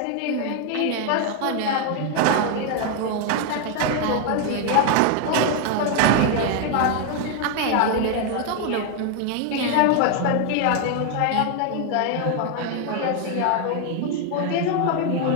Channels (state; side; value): different; both; correlation 0.01